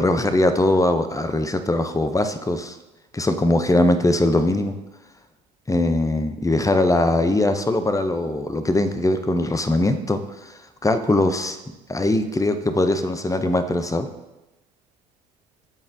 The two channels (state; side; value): normal; both; correlation 0.80